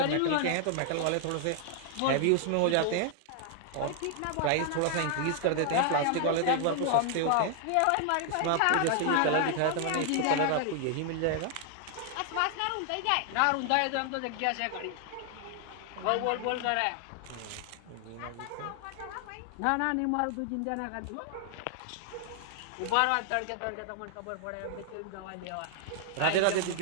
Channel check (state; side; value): different; both; correlation 0.00